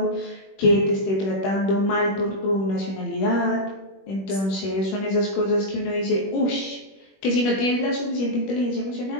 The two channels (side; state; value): right; late; 21 ms